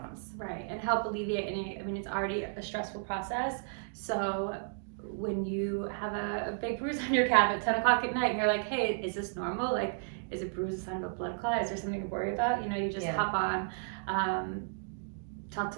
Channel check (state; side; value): silent; left; digital silence